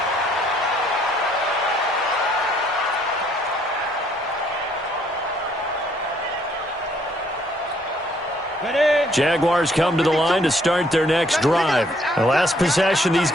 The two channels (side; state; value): both; normal; correlation 0.66